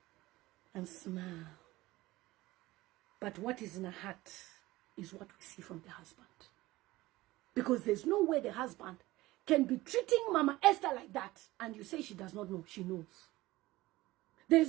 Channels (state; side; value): quieter; left; 18.5 dB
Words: and smile. But what is in her heart is what we see from the husband. Because there's no way the husband can be treating Mama Esther like that, and you say she does not know. She knows.